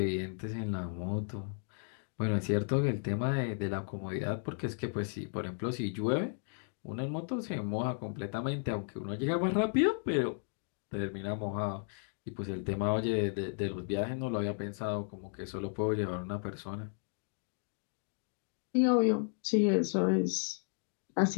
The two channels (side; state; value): right; silent; 55 dB below the other